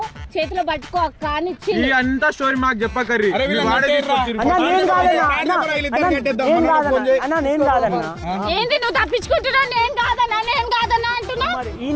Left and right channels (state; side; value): identical; both; correlation 1.00